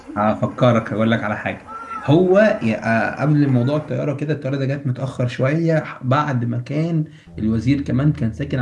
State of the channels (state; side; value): identical; both; correlation 1.00